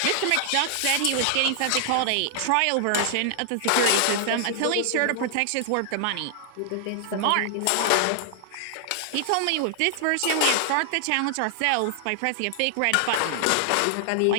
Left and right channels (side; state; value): both; different; correlation 0.00